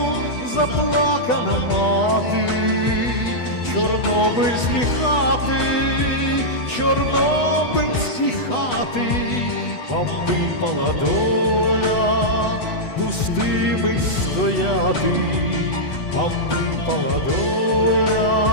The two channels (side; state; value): right; late; 8.1 ms